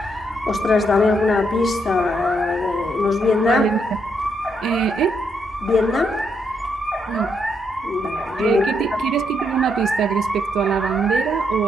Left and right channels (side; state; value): both; normal; correlation 0.77